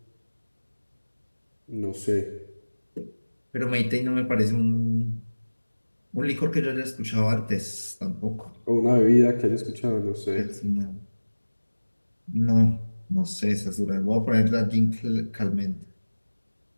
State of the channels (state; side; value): inverted; both; correlation -1.00